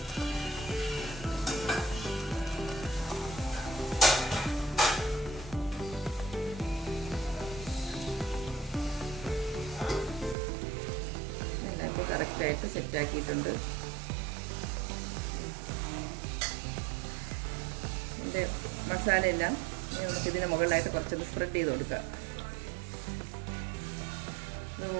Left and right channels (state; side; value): drops out; left; at 10.4 s